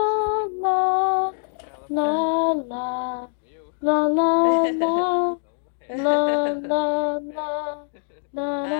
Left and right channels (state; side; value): silent; right; digital silence